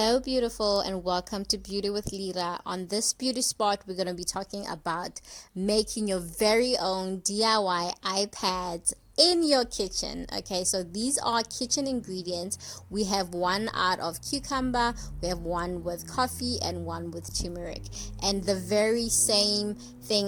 beautiful, and welcome to Beauty with Lira. On this beauty spot, we're going to be talking about making your very own DIY iPads in your kitchen. Okay, so these are kitchen ingredients. We have one out of cucumber, we have one with coffee, and one with turmeric. And the very same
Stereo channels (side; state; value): both; identical; correlation 1.00